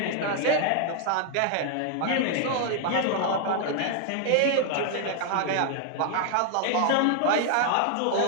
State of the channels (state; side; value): different; both; correlation 0.00